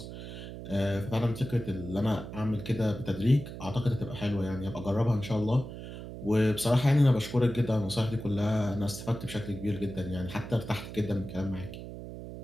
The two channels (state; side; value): noise; right; hum, 10 dB below the sound